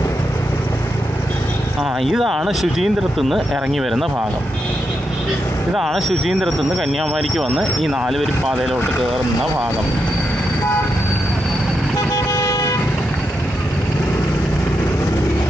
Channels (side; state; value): both; normal; correlation 0.84